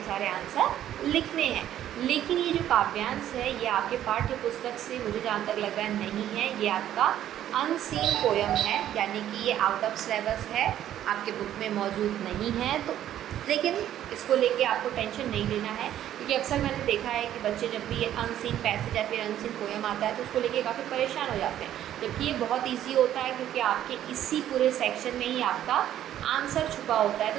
सारे आंसर लिखने हैं। लेकिन ये जो काव्यांश है ये आपके पाठ्य पुस्तक से मुझे जहाँ तक लग रहा है नहीं है, ये आपका अनसीन पोयम है, यानी कि ये आउट ऑफ सिलेबस है, आपके बुक में मौजूद नहीं है। तो लेकिन इसको लेके आपको टेंशन नहीं लेना है, क्योंकि अक्सर मैंने देखा है कि बच्चे जब भी ये अनसीन पैसेज या फिर अनसीन पोयम आता है तो उसको लेके काफ़ी परेशान हो जाते हैं, जबकि ये बहुत ईजी होता है, क्योंकि आपके इसी पूरे सेक्शन में ही आपका आंसर छुपा होता है।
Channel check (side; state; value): left; quieter; 11.6 dB